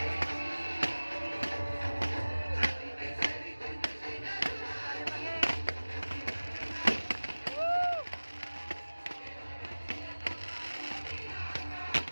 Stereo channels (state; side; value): inverted; both; correlation -1.00